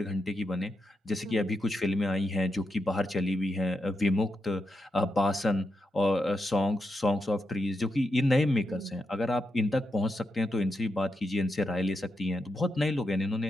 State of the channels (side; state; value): both; normal; correlation 0.85